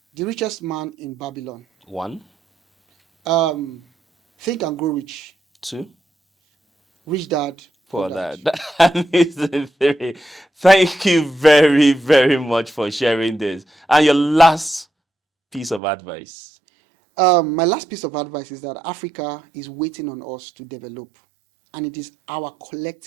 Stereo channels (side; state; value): left; drops out; at 15.8 s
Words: Richest Man in Babylon. 1, Think and Grow Rich. 2, Rich Dad, Poor for Dad. that. That is the 3. Thank you very, very much for sharing this. And your last piece of advice. My last piece of advice is that Africa is waiting on us to develop, and it is our